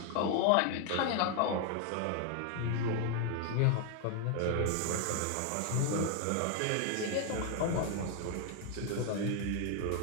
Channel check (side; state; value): both; different; correlation 0.00